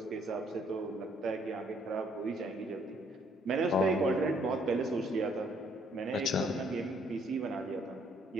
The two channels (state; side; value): normal; both; correlation 0.66